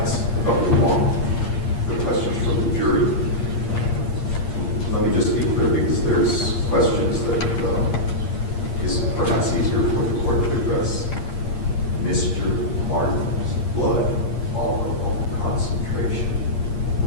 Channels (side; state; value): right; late; 8.6 ms